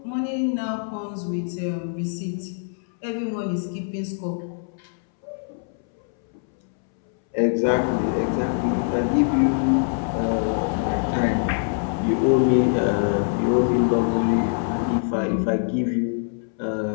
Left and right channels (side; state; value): right; silent; 63 dB below the other